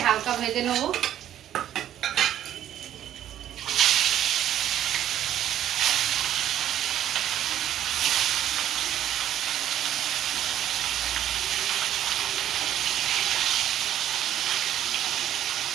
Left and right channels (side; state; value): left; quieter; 11.3 dB